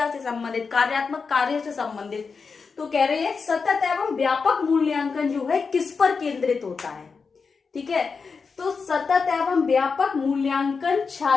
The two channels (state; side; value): quieter; right; 5.1 dB